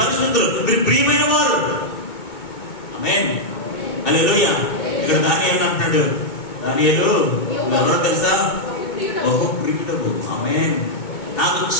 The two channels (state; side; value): late; right; 2.2 ms